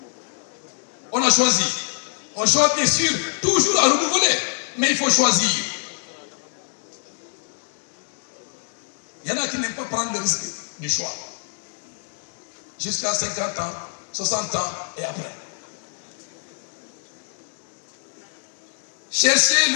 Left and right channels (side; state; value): right; silent; digital silence